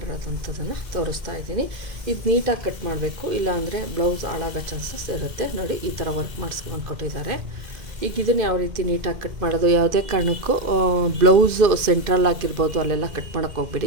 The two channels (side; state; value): left; late; 2.1 ms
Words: ತೋರಿಸ್ತಾ ಇದ್ದೀನಿ. ಇದು ನೀಟಾಗಿ ಕಟ್ ಮಾಡಬೇಕು, ಇಲ್ಲಾಂದರೆ ಬ್ಲೌಸ್ ಹಾಳಾಗೋ ಚಾನ್ಸಸ್ ಇರುತ್ತೆ. ನೋಡಿ, ಈ ಥರ ವರ್ಕ್ ಮಾಡಿಸ್ಕೊಂಡು ಕೊಟ್ಟಿದ್ದಾರೆ. ಈಗ ಇದನ್ನು ಯಾವ ರೀತಿ ನೀಟಾಗಿ ಕಟ್ ಮಾಡೋದು, ಯಾವುದೇ ಕಾರಣಕ್ಕೂ ಬ್ಲೌಸು ಸೆಂಟ್ರಲ್ ಆಗಿರ್ಬೋದು ಅಲ್ಲೆಲ್ಲ ಕಟ್ ಮಾಡೋಕ್ಕೆ